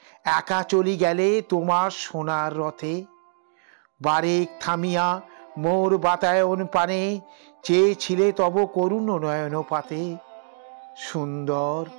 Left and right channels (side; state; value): left; silent; digital silence